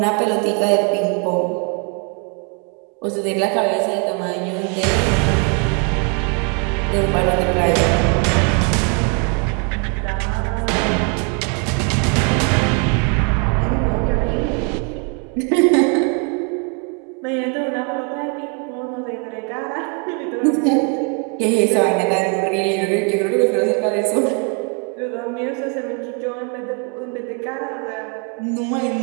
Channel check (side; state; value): left; quieter; 37.6 dB